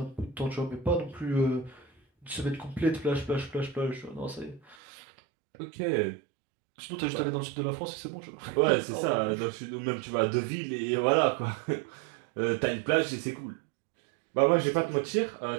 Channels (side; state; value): left; drops out; at 4.8 s